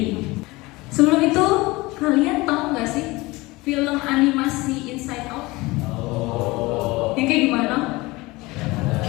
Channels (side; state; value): right; quieter; 22.0 dB